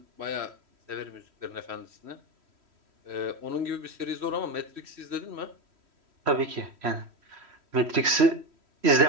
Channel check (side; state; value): left; late; 3.1 ms